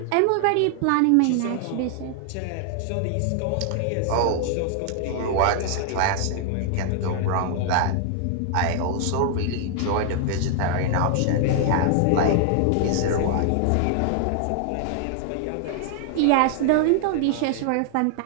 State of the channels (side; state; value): both; different; correlation -0.01